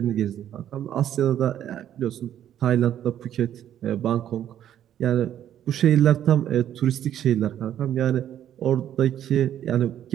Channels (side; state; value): left; quieter; 10.8 dB